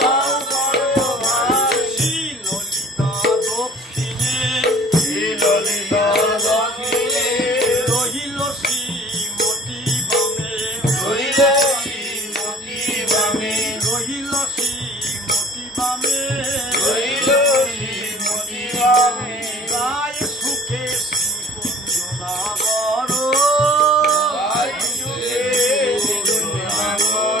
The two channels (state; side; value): normal; both; correlation 0.51